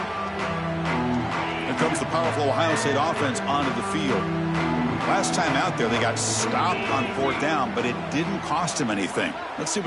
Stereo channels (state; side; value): identical; both; correlation 1.00